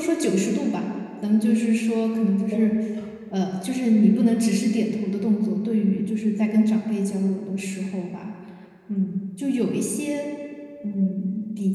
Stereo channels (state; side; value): identical; both; correlation 1.00